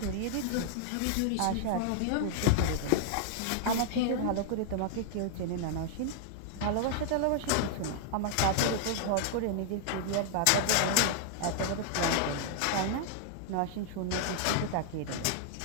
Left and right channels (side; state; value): both; different; correlation -0.01